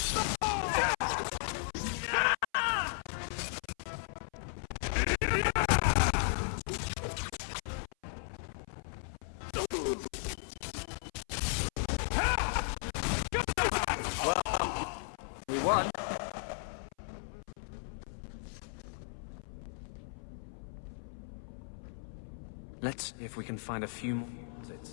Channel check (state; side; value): silent; right; 54 dB below the other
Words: Let's see if we can find a few more